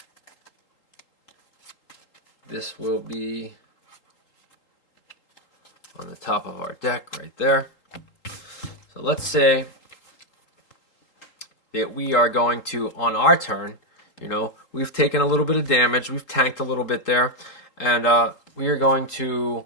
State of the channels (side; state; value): right; late; 3.8 ms